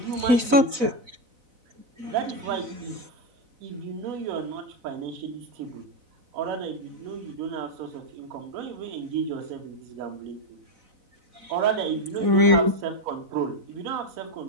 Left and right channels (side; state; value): left; late; 4.0 ms